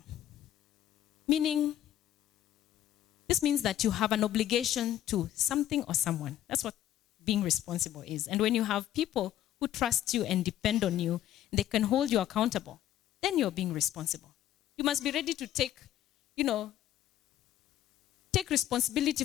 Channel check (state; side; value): quieter; right; 12.3 dB